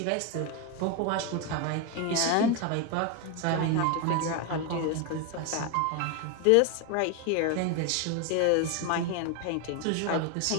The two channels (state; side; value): different; both; correlation 0.02